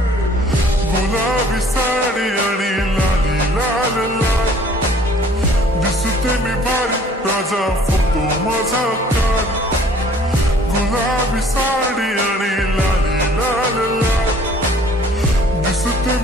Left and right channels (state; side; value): normal; both; correlation 0.55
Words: गुलाबी साडी आणि लाली लाल लाल, दिसते मी भारी राजा फोटो माझा काढ. गुलाबी साडी आणि लाली लाल लाल, दिसते